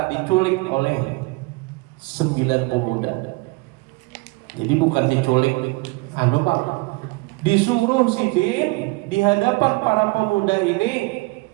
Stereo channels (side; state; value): left; quieter; 25.0 dB